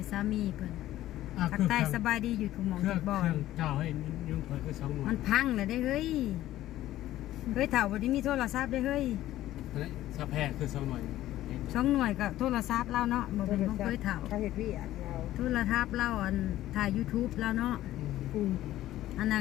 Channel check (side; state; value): right; quieter; 14.3 dB